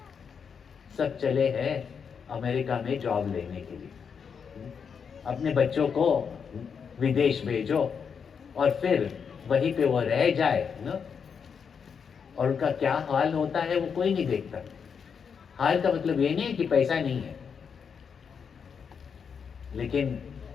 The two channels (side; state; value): right; quieter; 6.5 dB